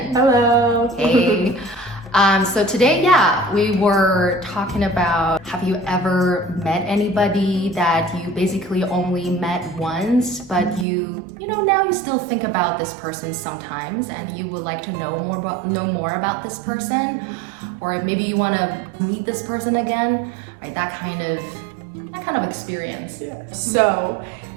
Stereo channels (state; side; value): drops out; left; at 10.9 s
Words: Hello. Hey. So today, we were talking about, have you ever met anybody that you basically only met once, but now you still think about this person sometimes and you would like to know more about this person, or maybe you want to meet this person again, right? That kind of experience. Yeah. So